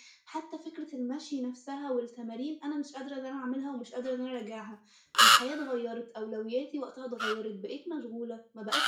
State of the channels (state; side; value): identical; both; correlation 1.00